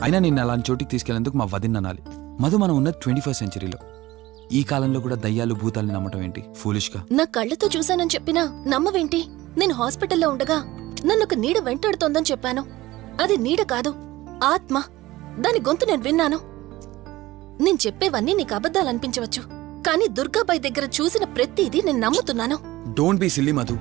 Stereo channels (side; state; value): left; quieter; 17.9 dB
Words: అయినా నిన్ను అలాంటి చోటికి తీసుకెళ్లేందుకు మా వదిన అనాలి. మధు, మనం ఉన్నది 21st సెంచరీలో. ఈ కాలంలో కూడా దయ్యాలు భూతాల్ని నమ్మటం ఏంటి ఫూలిష్గా? నా కళ్ళతో చూశానని చెప్పినా నమ్మవేంటి? నేను హాస్పిటల్లో ఉండగా నన్ను ఒక నీడ వెంటాడుతోందని చెప్పాను. అది నీడ కాదు, ఆత్మ. దాని గొంతు నేను విన్నాను. నేను చెప్పేవన్నీ నీకు అబద్ధాలనిపించవచ్చు, కానీ దుర్గాబాయ్ దగ్గర చూసిన ప్రతిదీ నేను నమ్ముతున్నాను. డోంట్ బీ సిల్లీ మధు,